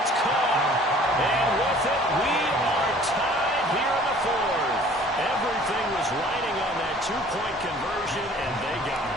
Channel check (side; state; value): both; normal; correlation 0.51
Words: it's caught. And with it, we are tied here in the 4th. Everything was riding on that 2-point conversion, and they got